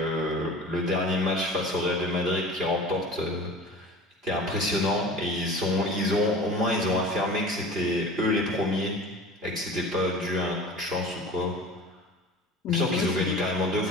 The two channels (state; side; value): normal; both; correlation 0.38